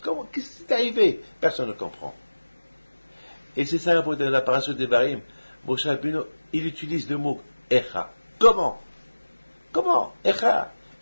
Qu'est-ce qui est arrivé? Personne ne comprend. Et c'est ça dans la parasha des Barim. Moshe Rabbeinu, il utilise le mot Echa. Comment? Echa.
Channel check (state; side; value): inverted; both; correlation -1.00